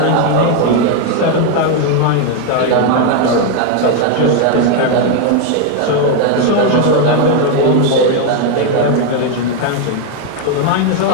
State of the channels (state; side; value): different; both; correlation 0.01